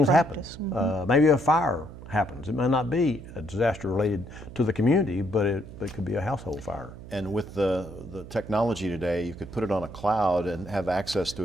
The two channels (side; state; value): right; noise; hum, 14 dB below the sound